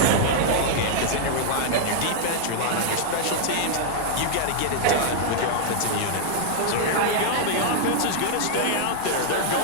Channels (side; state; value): both; different; correlation -0.01